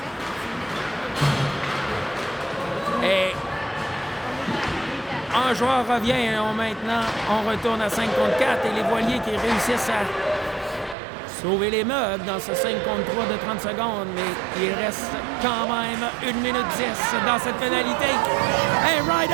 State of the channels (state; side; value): drops out; left; at 11.0 s